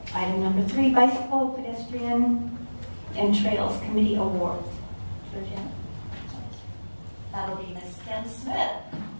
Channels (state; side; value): inverted; both; correlation -1.00